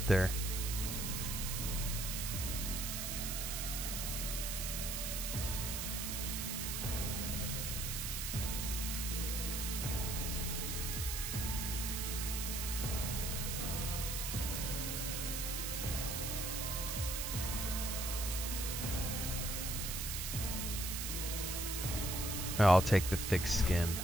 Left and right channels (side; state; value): right; noise; hiss, 2 dB below the sound